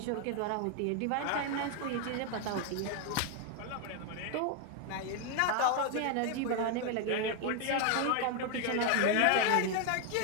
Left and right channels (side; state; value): both; different; correlation 0.01